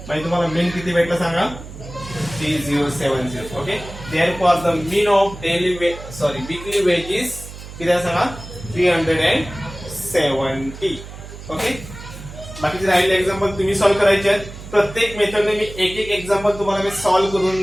म्हणजे तुम्हाला मीन किती भेटला सांगा, 3070. Okay, therefore the mean of weekly wedges किती आहे सांगा, 370. ओके, बाकीचे राहिले एक्झाम्पल तुम्ही सॉल्व्ह करायचे आहेत. प्रत्येक मेथडने मी एक एक्झाम्पल तुम्हाला मी सॉल्व्ह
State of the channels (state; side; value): noise; right; hum, 13 dB below the sound